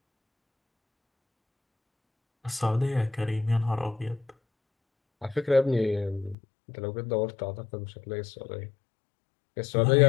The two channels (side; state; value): right; drops out; at 6.4 s